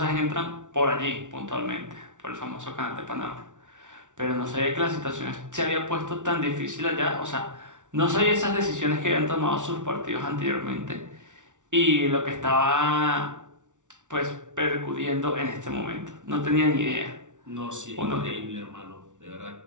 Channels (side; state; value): left; late; 0.86 ms